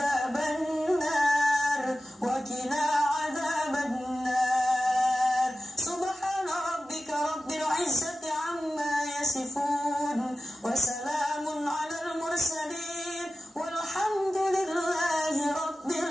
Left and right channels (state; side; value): normal; both; correlation 0.94